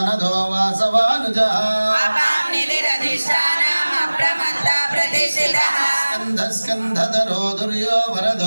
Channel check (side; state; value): both; inverted; correlation -1.00